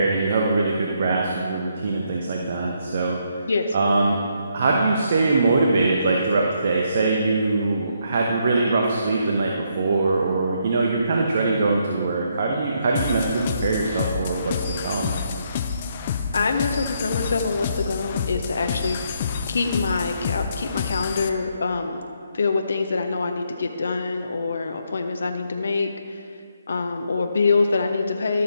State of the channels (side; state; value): both; inverted; correlation -0.75